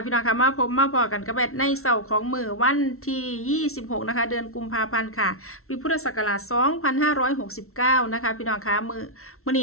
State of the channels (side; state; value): right; late; 0.63 ms